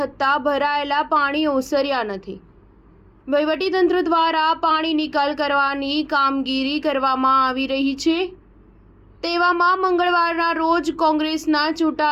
ભરાયેલા પાણી ઓસર્યા નથી। વહીવટીતંત્ર દ્વારા પાણી નિકાલ કરવાની કામગીરી કરવામાં આવી રહી છે। તેવામાં મંગળવારના રોજ કોંગ્રેસના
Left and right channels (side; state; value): both; identical; correlation 1.00